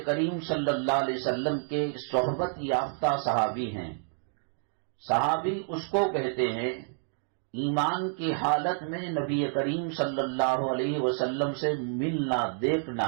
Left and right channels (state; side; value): silent; left; digital silence